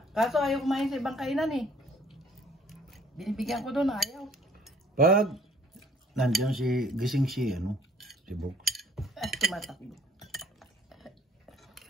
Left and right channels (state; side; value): normal; both; correlation 0.57